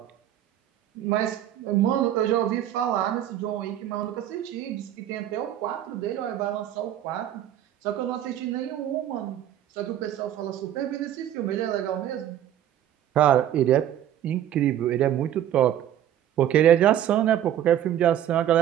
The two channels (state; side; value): quieter; left; 11.3 dB